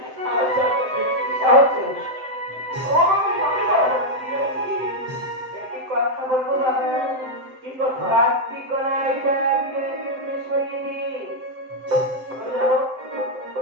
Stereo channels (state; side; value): late; left; 7.8 ms